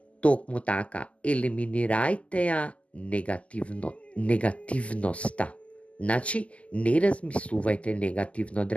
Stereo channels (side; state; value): right; late; 0.065 ms